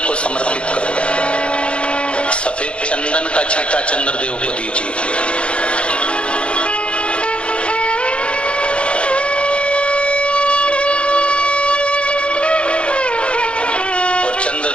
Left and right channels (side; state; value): right; late; 0.058 ms